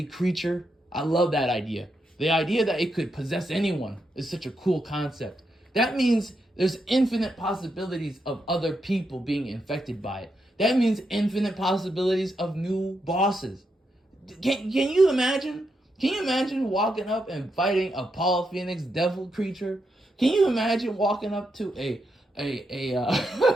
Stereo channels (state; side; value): normal; both; correlation 0.83